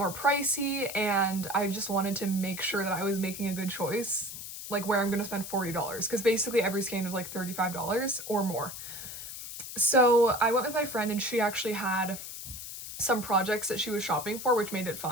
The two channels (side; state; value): left; noise; hiss, 9 dB below the sound